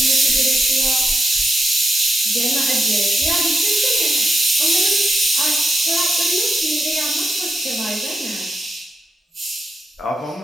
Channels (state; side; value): normal; both; correlation 0.85